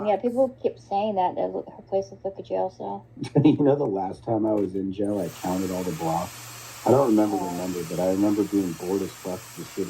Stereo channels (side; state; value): both; identical; correlation 1.00